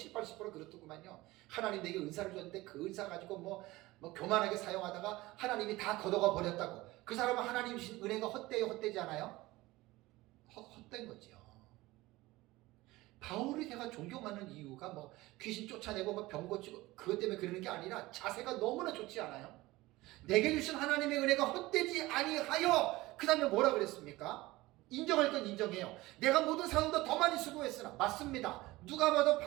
그렇더구만요. 하나님 내게 은사를 줬는데 그 은사 가지고 뭐 교만하게 사용하다가 하나님이 다 걷어가 버렸다고. 그 사람은 하나님 주신 은혜가 헛되요, 헛되지 않아요? 헛된 거죠. 바울을 제가 존경하는 이유가 귀신 쫓아내고 병 고치고 그것 때문에 그러는 게 아니라 자세가 너무나 좋지 않아요? 내게 주신 하나님의 은혜가 헛되지 아니하여. 그 다음에 뭐라 그랬습니까? 인정할 건 인정해요. 내가 모든 사도보다 더 많이 수고했으나. 맞습니다. 누가 봐도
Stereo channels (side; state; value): left; quieter; 19.4 dB